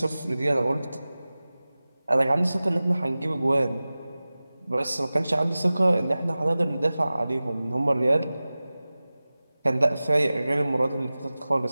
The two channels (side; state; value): both; inverted; correlation -0.97